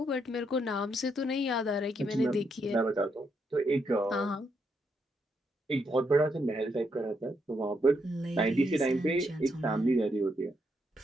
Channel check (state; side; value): normal; both; correlation 0.78